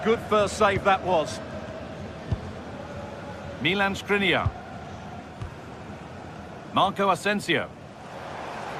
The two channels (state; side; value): identical; both; correlation 1.00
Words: good first save that was. Milan Skriniar. Marco Asensio.